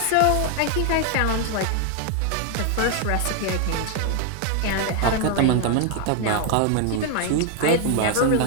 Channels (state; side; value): different; both; correlation 0.01